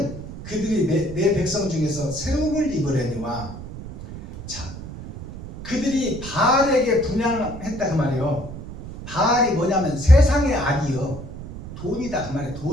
그들이 내 백성 중에서 세움을 입으려니와. 자, 그들이 바알에게 분양했다 그 말이에요. 바알이 뭐냐면 세상의 악이요, 돈이다 그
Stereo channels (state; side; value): noise; right; rumble, 11 dB below the sound